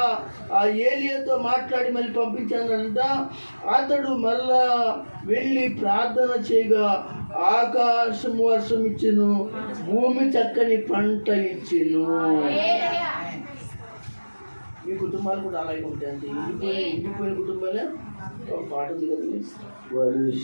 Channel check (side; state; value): both; inverted; correlation -1.00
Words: ఆ ఏలియాతో మాట్లాడి మళ్ళీ పంపించానంట. అతడు మరలా వెళ్ళి ప్రార్థన చేయగా ఆకాశం వర్షం ఇచ్చెను, భూమి చక్కని పంట ఇచ్చెను. మీ కుటుంబాలు కూడా అలాగే ఉంటాయి. అంటే ఇండిపోయిన కుటుంబాలే. ఒక పాట ఉంది కదా,